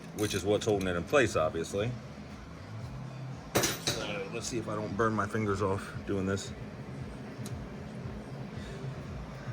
which is what's holding it in place, obviously. So, let's see if I don't burn my fingers off doing this.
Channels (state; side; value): identical; both; correlation 1.00